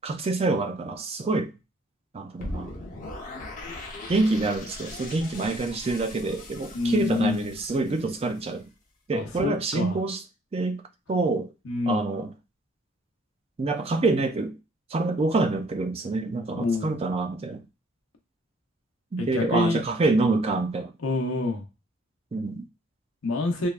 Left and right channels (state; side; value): normal; both; correlation 0.61